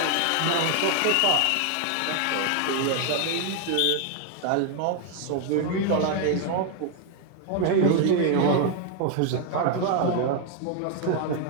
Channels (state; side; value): different; both; correlation 0.00